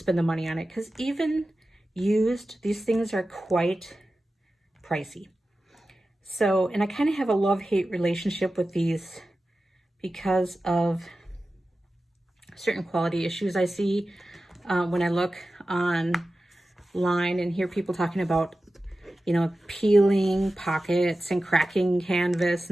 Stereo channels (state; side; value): normal; both; correlation 0.94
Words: the money on it, because even used, these things are quite pricey. So, and I kind of have a love-hate relationship with these because of certain quality issues I see when I look online and hear people talking about, you know, peeling pockets and cracking canvas